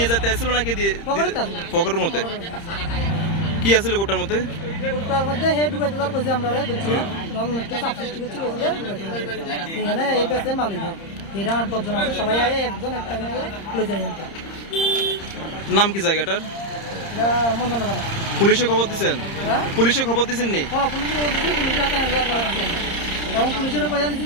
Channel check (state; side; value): late; right; 30 ms